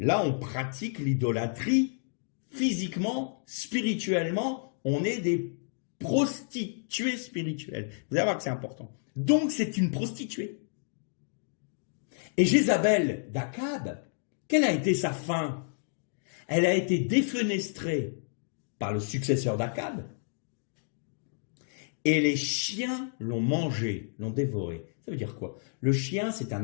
on pratique l'idolâtrie physiquement, spirituellement, on est des prostituées spirituelles. Vous allez voir que c'est important. Donc, c'est une prostituée. Et Jézabel d'Akab, quelle a été sa fin? Elle a été défenestrée par le successeur d'Akab, et les chiens l'ont mangée, l'ont dévorée. Ça veut dire quoi? Le chien, c'est un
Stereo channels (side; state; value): right; silent; digital silence